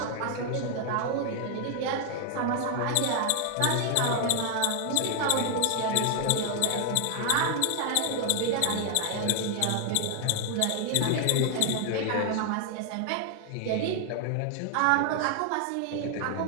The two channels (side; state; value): both; different; correlation 0.00